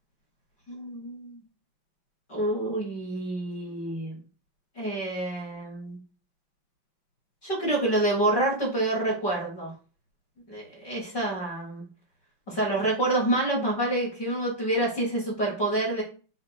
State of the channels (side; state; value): right; late; 5.3 ms